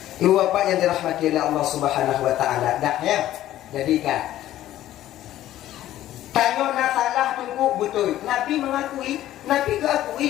Ibu bapak yang dirahmati oleh Allah Subhanahu Wa Taala, dah ya, jadikan. Tanya nasalah tunggu betul. Nabi mengakui, Nabi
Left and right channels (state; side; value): quieter; right; 13.5 dB